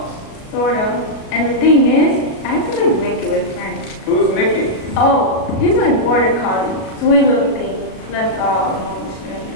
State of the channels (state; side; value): late; right; 37 ms